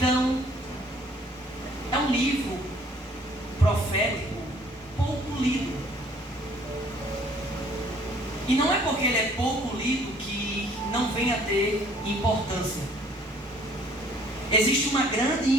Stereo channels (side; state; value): both; normal; correlation 0.58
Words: é um livro profético pouco lido. E não é porque ele é pouco lido que não vem a ter importância. Existe uma grande